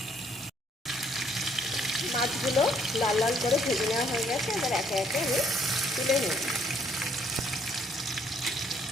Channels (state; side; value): normal; both; correlation 0.66